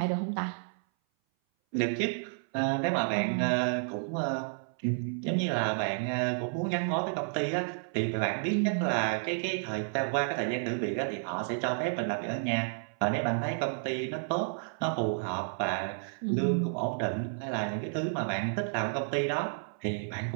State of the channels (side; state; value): left; silent; 57 dB below the other